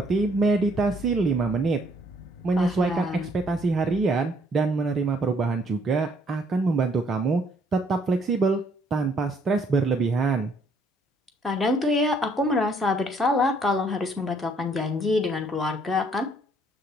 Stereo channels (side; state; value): both; normal; correlation 0.65